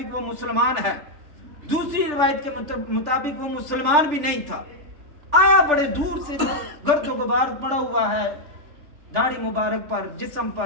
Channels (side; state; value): left; late; 3.4 ms